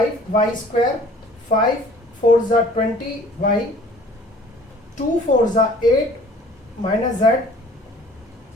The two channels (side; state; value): both; normal; correlation 0.51